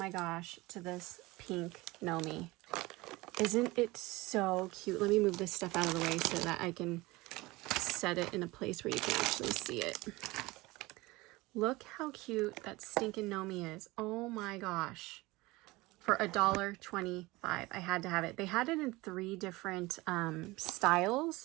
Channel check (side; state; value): left; quieter; 21.4 dB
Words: gosh, to this pink Nomi. Isn't it so cute? Let me move this stuff out of the way so that I can set it in a place where you can actually see it. Look how cute that stinking Nomi is. Oh my gosh. For $1.25. I had to have it. They had it in 3 different